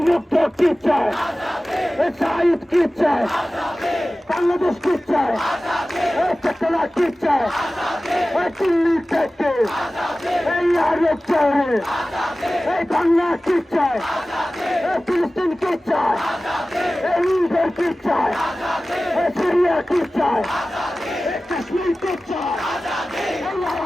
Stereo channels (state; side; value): normal; both; correlation 0.96